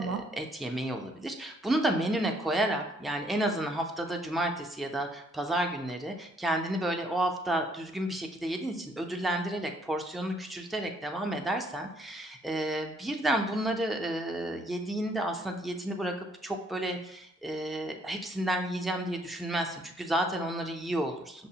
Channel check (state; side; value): normal; both; correlation 0.66